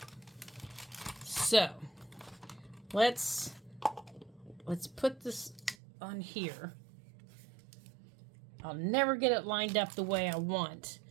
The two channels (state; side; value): drops out; left; at 5.8 s